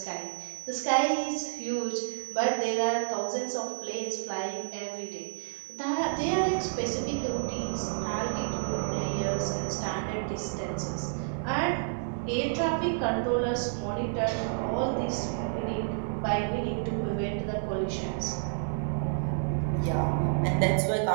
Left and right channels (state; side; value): silent; left; digital silence